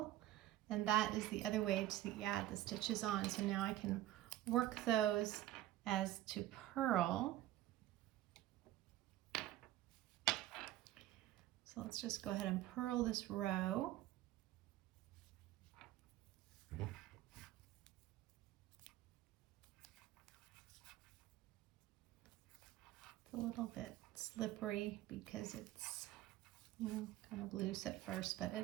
And that is the other way to add the stitches on. So now I can work those as to purl. So let's just go ahead and purl this row. It's a little bit slippery because it's, you know, kind of loose at first, but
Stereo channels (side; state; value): left; quieter; 14.4 dB